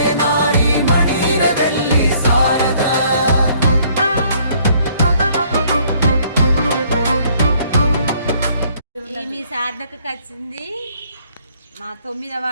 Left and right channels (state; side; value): inverted; both; correlation -0.62